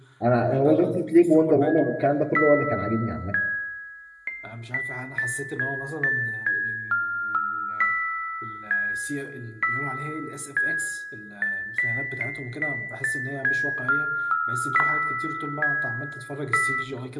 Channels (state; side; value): identical; both; correlation 1.00